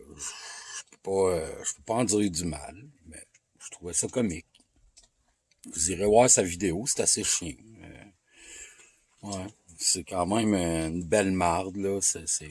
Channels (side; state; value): both; identical; correlation 1.00